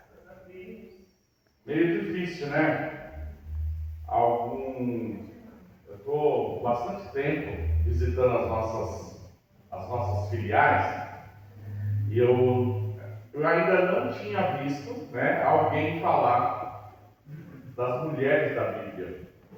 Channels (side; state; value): both; identical; correlation 1.00